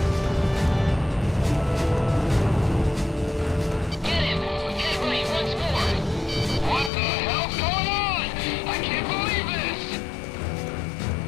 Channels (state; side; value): drops out; right; at 6.9 s